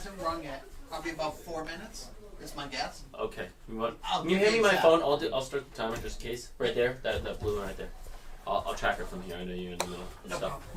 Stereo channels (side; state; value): both; identical; correlation 1.00